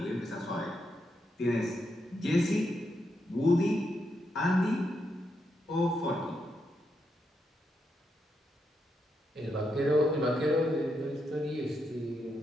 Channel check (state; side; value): normal; both; correlation 0.82